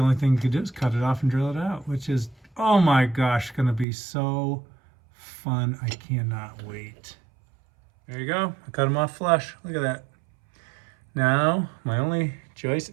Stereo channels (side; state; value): left; drops out; at 3.9 s